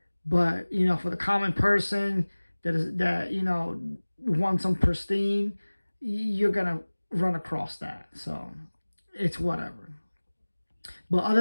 But, you know, for the common person that you know, wants some pristine, you're going to run across that. So, it's whatever. But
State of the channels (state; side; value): inverted; both; correlation -1.00